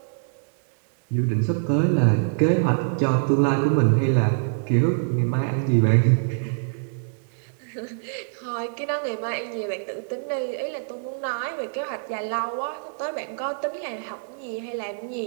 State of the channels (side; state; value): left; silent; digital silence